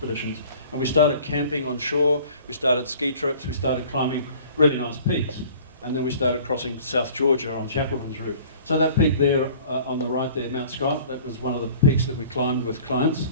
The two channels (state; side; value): inverted; both; correlation -0.48